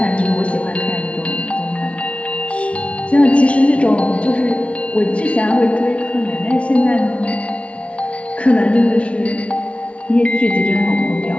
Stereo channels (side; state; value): right; late; 0.062 ms